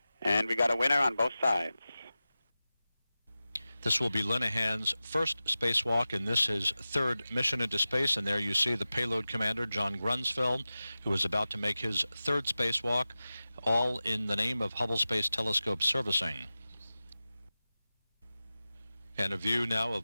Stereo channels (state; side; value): inverted; both; correlation -0.95